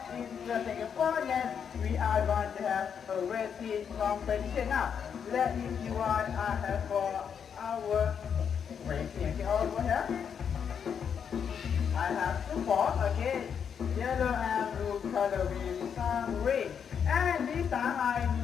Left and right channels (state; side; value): quieter; right; 7.4 dB